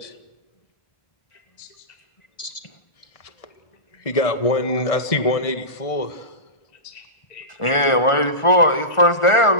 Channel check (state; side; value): late; right; 1.4 ms